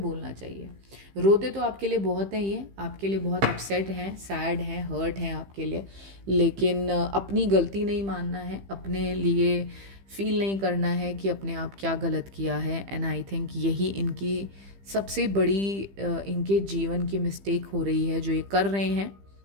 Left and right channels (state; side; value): late; left; 15 ms